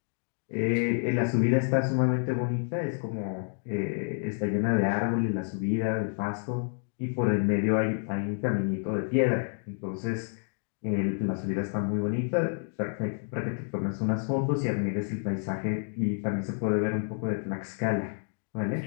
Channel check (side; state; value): right; silent; 58 dB below the other